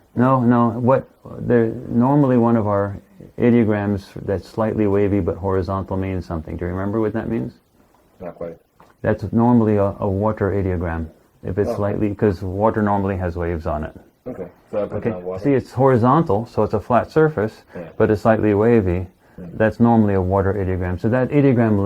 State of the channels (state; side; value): identical; both; correlation 1.00